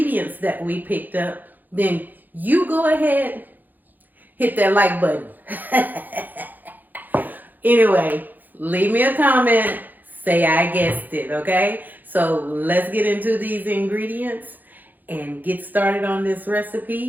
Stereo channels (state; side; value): late; left; 0.085 ms